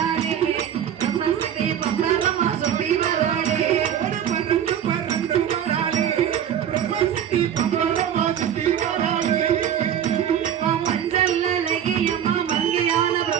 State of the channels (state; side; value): quieter; left; 9.6 dB